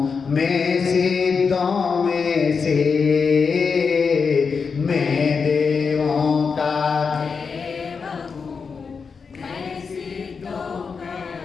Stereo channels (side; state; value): right; quieter; 5.4 dB